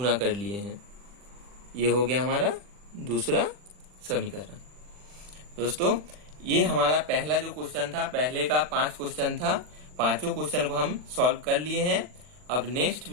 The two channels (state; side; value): late; left; 40 ms